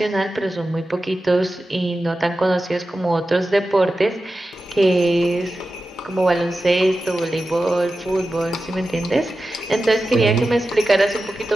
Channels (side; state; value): both; normal; correlation 0.93